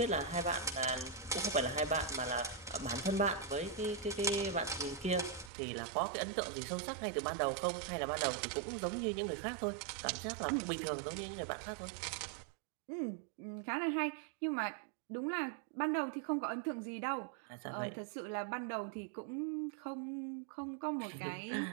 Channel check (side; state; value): left; drops out; at 5.5 s